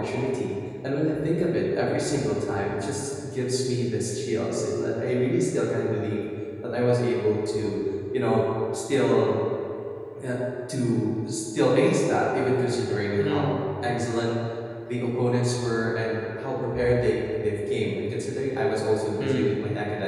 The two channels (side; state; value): both; identical; correlation 1.00